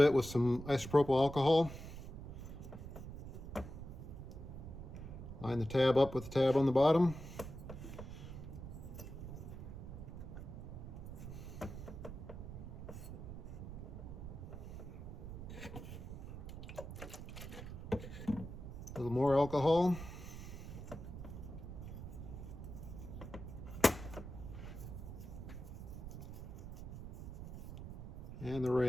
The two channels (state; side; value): noise; right; rumble, 9 dB below the sound